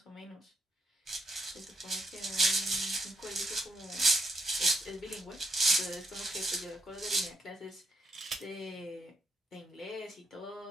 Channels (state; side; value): normal; both; correlation 0.74